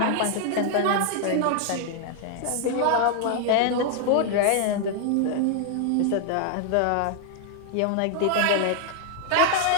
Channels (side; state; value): both; different; correlation 0.00